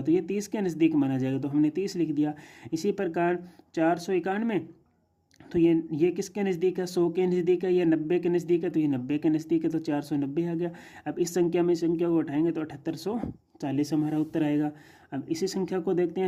तो ये 30 के नज़दीक माना जाएगा, तो हमने 30 लिख दिया। इसी प्रकार 491, तो ये किसके नज़दीक है, 100 के नज़दीक है या 90 के नज़दीक है, तो ये 90 के नज़दीक है, तो 490 आ गया। अब इस संख्या में संख्या को उठाएंगे तो 7840 हमारा उत्तर आएगा। अब इसी संख्या को देखते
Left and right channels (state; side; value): identical; both; correlation 1.00